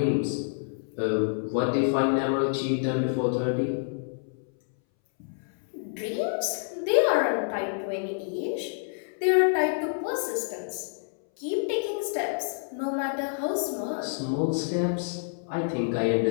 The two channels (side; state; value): right; silent; 59 dB below the other